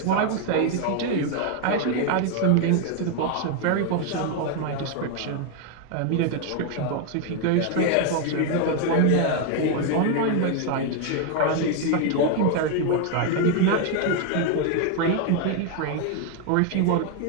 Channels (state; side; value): different; both; correlation 0.01